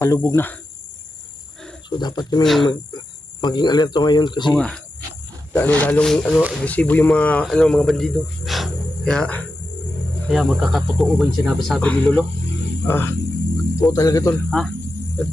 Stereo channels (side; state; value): both; normal; correlation 0.90